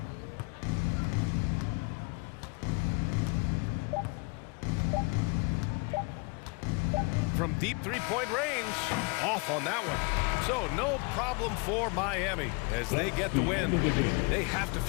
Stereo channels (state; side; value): quieter; right; 31.8 dB